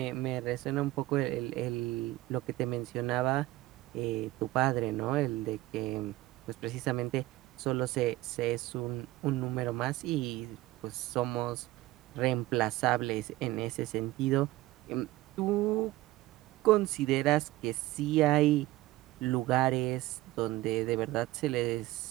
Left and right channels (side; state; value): left; quieter; 17.8 dB